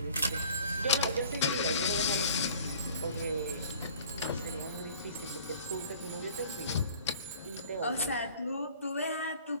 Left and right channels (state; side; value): inverted; both; correlation -0.49